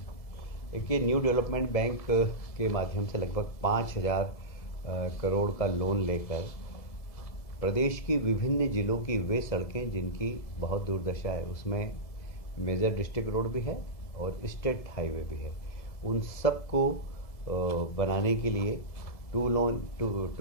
एक ये न्यू डेवलपमेंट बैंक के माध्यम से लगभग 5,000 करोड़ का लोन लेकर प्रदेश की विभिन्न जिलों की वे सड़कें जिनकी बहुत दुर्दशा है, उसमें मेजर डिस्ट्रिक्ट रोड भी है और स्टेट हाईवे भी है, उन सब को बनाने के लिए 2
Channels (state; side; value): late; right; 2.0 ms